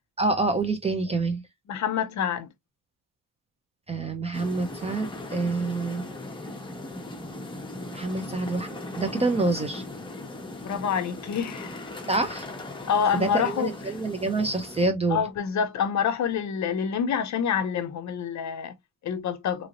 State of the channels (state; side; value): normal; both; correlation 0.22